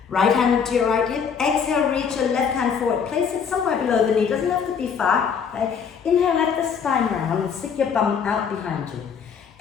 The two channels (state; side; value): quieter; right; 6.7 dB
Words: Right hand to your right hip. Exhale, reach your left hand forward. Place it somewhere below the knee. Doesn't have to be far. Right? Inhale, let the spine round and stick your bum out behind you.